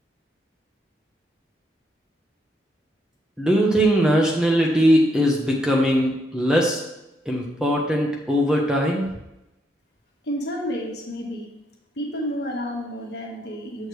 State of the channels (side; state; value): both; normal; correlation 0.77